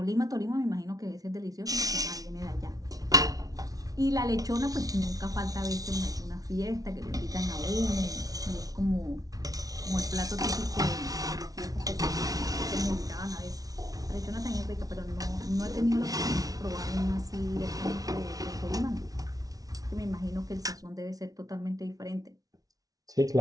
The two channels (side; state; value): left; late; 0.18 ms